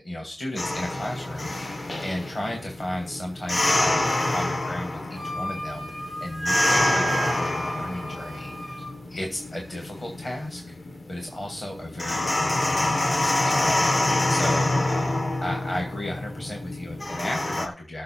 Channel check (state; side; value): normal; both; correlation 0.96